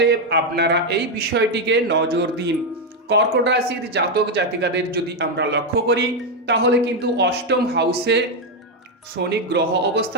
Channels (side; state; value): both; normal; correlation 0.05